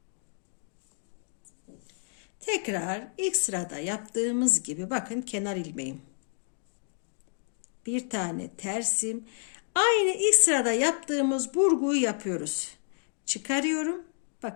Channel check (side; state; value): right; silent; 58 dB below the other